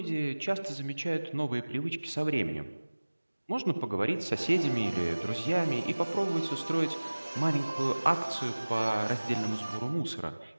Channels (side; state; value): both; inverted; correlation -1.00